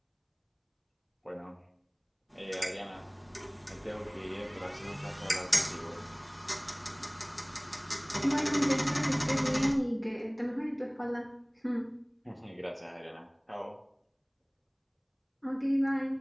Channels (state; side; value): identical; both; correlation 1.00